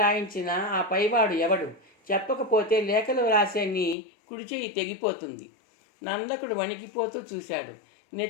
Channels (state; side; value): drops out; right; at 4.0 s